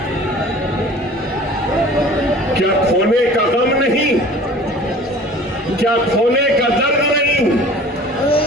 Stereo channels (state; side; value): normal; both; correlation 0.45